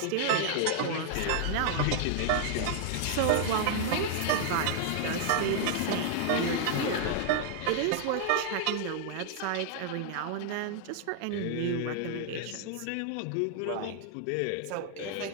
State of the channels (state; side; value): different; both; correlation 0.00